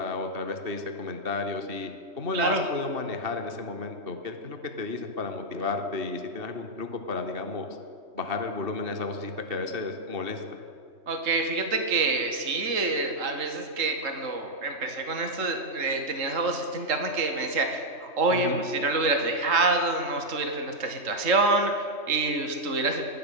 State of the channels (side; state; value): left; late; 3.2 ms